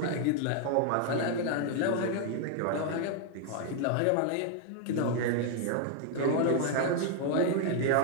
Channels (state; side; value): different; both; correlation 0.00